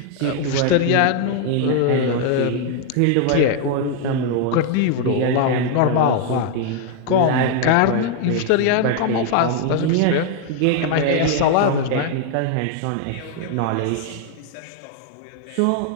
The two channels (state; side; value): different; both; correlation 0.00